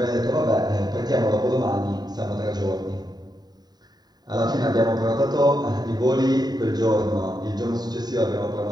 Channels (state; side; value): late; left; 0.20 ms